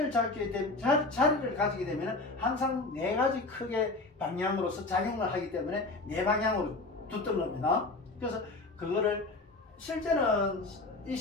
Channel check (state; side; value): quieter; right; 3.2 dB